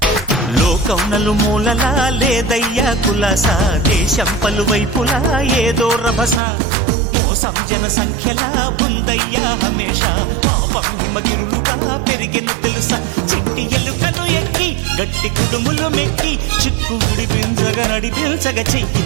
లోకం నలుమూలలా లేదయ్యా కులాస దేశం పలువైపులా ఏదో రభస మోసం జన సంఖ్యలా ఉందయ్యా హమేష పాపం హిమగిరులుగా పెరిగెను తెలుసా చిట్టి ఎలుకను ఎక్కి గట్టి కుడుములు మెక్కి చిక్కు విడిపించగా నడిపించగా చెయ్యి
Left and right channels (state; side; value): drops out; left; at 6.4 s